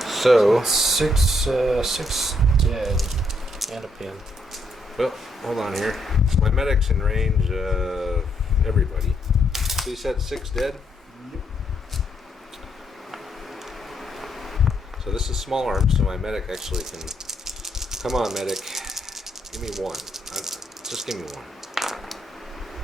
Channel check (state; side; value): normal; both; correlation 0.75